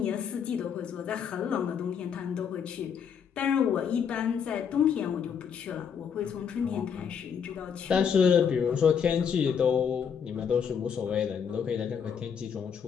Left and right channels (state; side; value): quieter; right; 7.3 dB